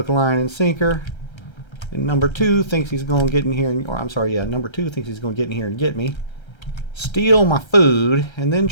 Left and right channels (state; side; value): late; right; 1.3 ms